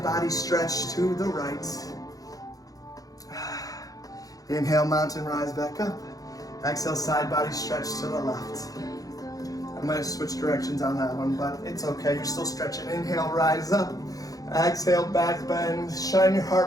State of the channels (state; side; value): late; right; 0.17 ms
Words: body stretch to the right. Inhale, mountain, rise back up. Exhale, side body stretch to the left. I might have switched directions on that one, but it's okay, you're still stretching. Inhale, rise up. Exhale, back bend. Shine your